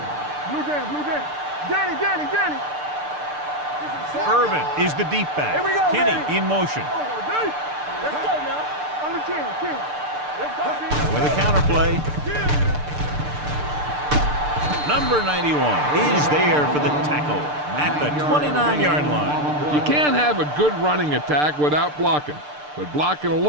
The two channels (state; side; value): late; left; 6.7 ms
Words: Blue down. Danny. Irvin is the deep back. Here we go, Kenny baby. in motion. Let's go now. Under 10. Let's go, baby. With a counterplay. Number 91 is there for the tackle at the 29-yard line. You can't have a good running attack without blocking, but blocking